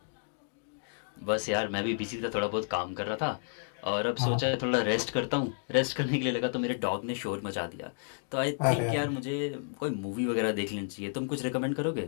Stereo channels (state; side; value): silent; right; digital silence